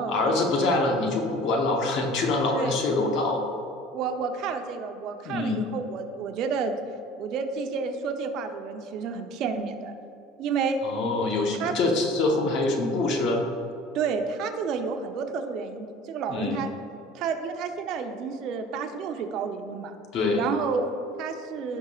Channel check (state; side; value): normal; both; correlation 0.45